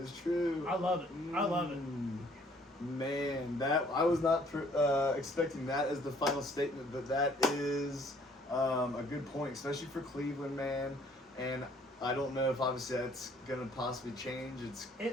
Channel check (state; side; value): normal; both; correlation 0.60